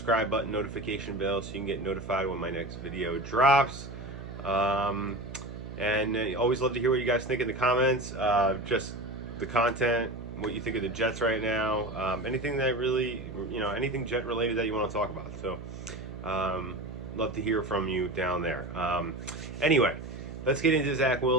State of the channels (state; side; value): noise; right; hum, 10 dB below the sound